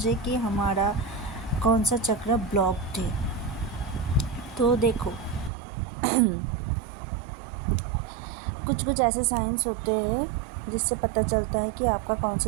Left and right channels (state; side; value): drops out; left; at 5.5 s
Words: कि हमारा कौन सा चक्र ब्लॉक्ड है। तो देखो कुछ ऐसे साइंस होते हैं जिससे पता चलता है कि आपका कौन